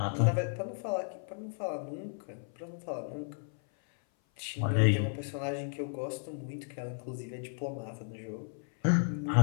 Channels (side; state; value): right; silent; 55 dB below the other